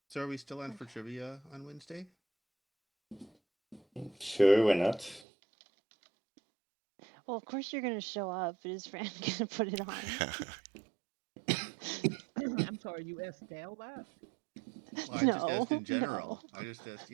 So are we still on for trivia on Wednesday? Sure, why not? Well, of course you're gonna show up. Is Fran gonna put it on? I'm sorry, you asked Dale that? Well, I just asked in general. No. I just asked,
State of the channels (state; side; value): drops out; left; at 5.2 s